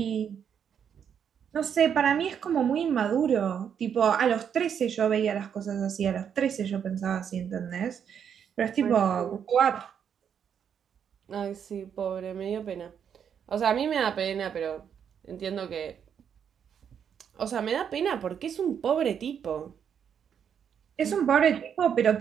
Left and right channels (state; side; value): quieter; left; 8.0 dB